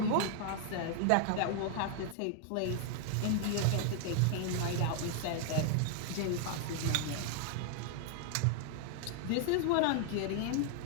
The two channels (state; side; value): different; both; correlation 0.00